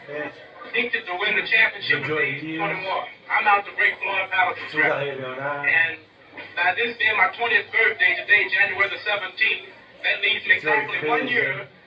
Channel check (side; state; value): both; identical; correlation 1.00